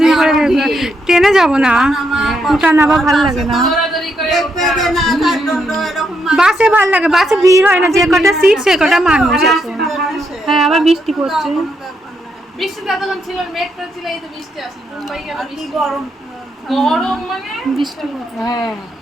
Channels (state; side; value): normal; both; correlation 0.79